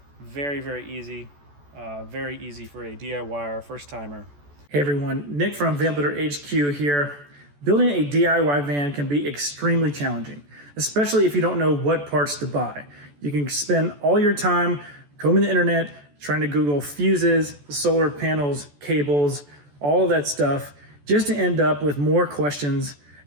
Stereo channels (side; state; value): left; late; 14 ms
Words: Very, very easy. Very easy for a DIYer, first timer. Hey everyone, Nick from VanMade HQ here. Building a DIY van can be extremely challenging, especially if you don't know what parts to buy. You can spend all your time combing the internet, trying to Google fuses, solar panels, cables, all of that stuff, just to end up with more questions